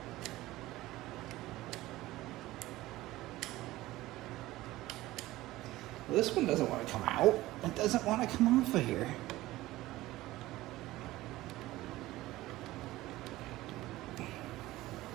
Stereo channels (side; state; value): left; quieter; 17.3 dB